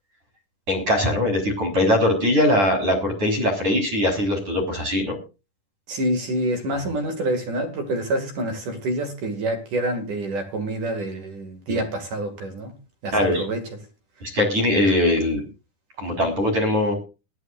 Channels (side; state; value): left; late; 10 ms